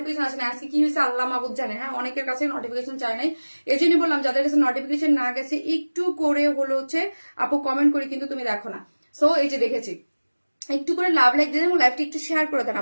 আসে না, আজকে কি হয়েছে আল্লাহ মাহবুব জানে। হ্যাঁ অনেকের কাছে নোটিফিকেশন চায় নাই, এই জন্য বললাম যাদের কাছে নোটিফিকেশন না গেছে একটু করে হলো হচ্ছে আপু কমেন্ট করে কিন্তু তুমি দেখো না। সো এই যে দেখেছি, একটু করে লাভ লাইক দিয়ে এবং লাইভটা একটু শেয়ার করে দেন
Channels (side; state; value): both; inverted; correlation -1.00